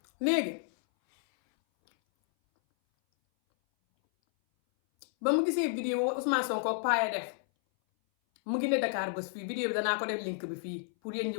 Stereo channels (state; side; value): silent; right; 57 dB below the other